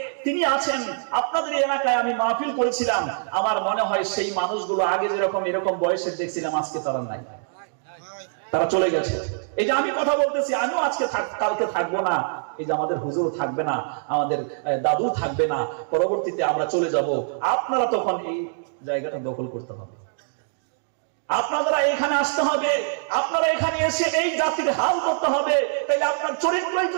তিনি আছেন আপনাদের এলাকায়। আমি মাহফিল করেছিলাম, আমার মনে হয় সেই মানুষগুলো আগে যেরকম এরকম বয়সের দেখছিলাম, আজকে তারা নাই, তারা চলে গেছে। এই যে আমি কথা বলতেছি, আমিও আজকে কালকে থাকবো না, এই যে আমাদের হুজুর থাকবে না, আমাদের দাদু থাকবে না, পরবর্তীতে আমরা চলে যাব। আপনারা তখন এই জায়গাটা দখল করতে হবে, আপনারা এখানে আসতে হবে, আপনারা এখানে এসে এই জাতির হাল করতে হবে। তাইলে আপনার চরিত্রই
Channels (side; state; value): left; silent; digital silence